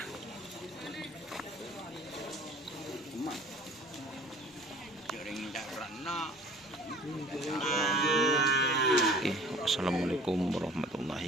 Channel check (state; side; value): normal; both; correlation 0.48